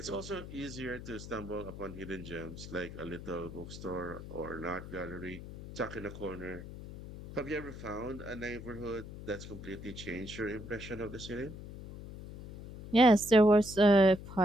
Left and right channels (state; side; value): noise; left; hum, 12 dB below the sound